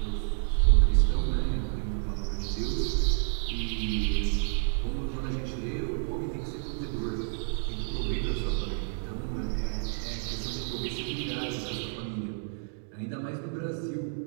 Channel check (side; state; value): left; silent; digital silence